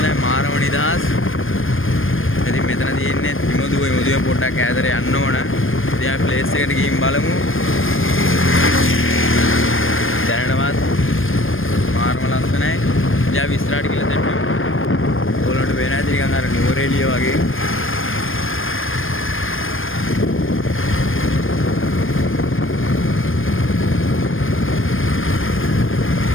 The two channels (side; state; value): right; late; 0.59 ms